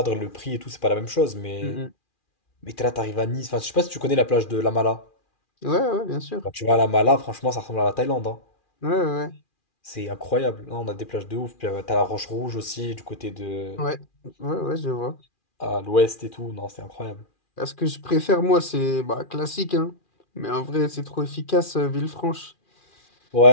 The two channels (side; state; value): right; late; 2.4 ms